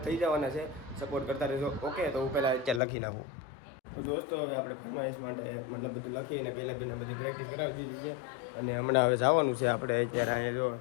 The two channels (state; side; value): drops out; right; at 2.8 s